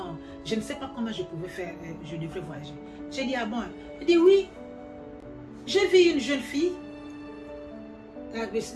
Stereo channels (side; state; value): both; identical; correlation 1.00